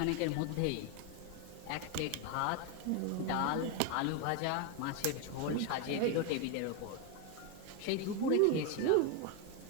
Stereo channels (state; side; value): different; both; correlation 0.02